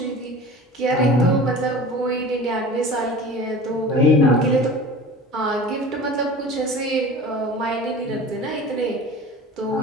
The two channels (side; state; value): both; normal; correlation 0.38